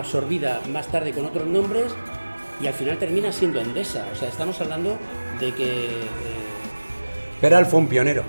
más tarde con otros nombres y al final termina siendo Endesa. O sea, estamos hablando de que... Peral fue un pionero.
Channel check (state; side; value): inverted; both; correlation -1.00